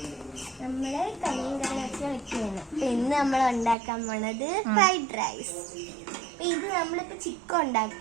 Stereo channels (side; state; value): left; drops out; at 3.8 s